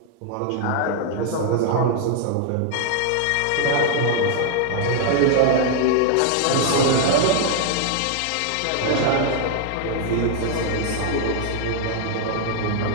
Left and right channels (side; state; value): both; different; correlation 0.00